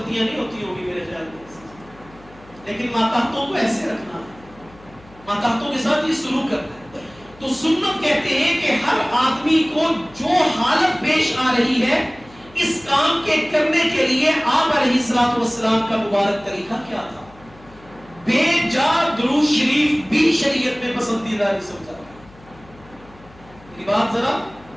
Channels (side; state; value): left; noise; hum, 24 dB below the sound